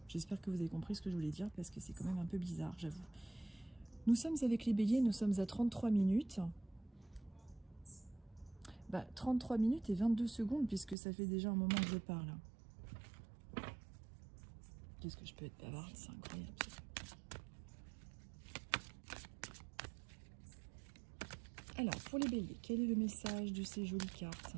j'espère que vous avez compris ce que je voulais dire, parce que c'est quand même un peu bizarre, j'avoue. Nous sommes avec les béliers, nous sommes à 33 minutes. 33 minutes et 22 secondes, puisque ça fait déjà un moment que je parle. Qu'est-ce que je peux être bavarde, c'est incroyable. Alors, pour les béliers, quel est le message de ces jolies cartes?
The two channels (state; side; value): drops out; left; at 11.0 s